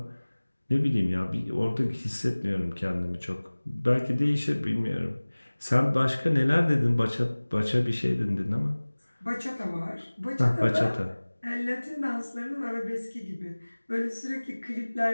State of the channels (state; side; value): inverted; both; correlation -1.00